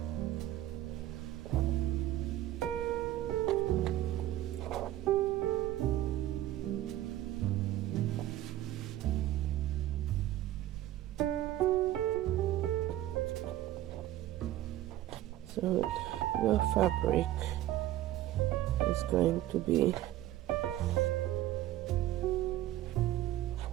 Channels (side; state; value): left; quieter; 14.0 dB